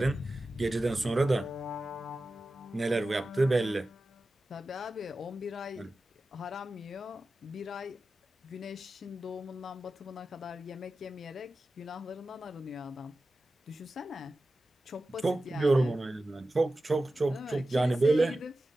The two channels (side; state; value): both; normal; correlation 0.93